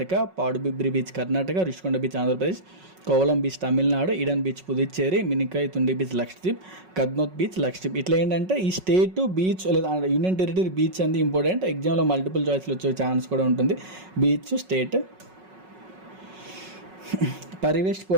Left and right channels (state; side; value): late; left; 5.4 ms